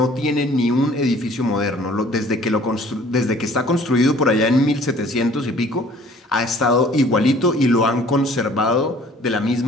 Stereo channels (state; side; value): normal; both; correlation 0.53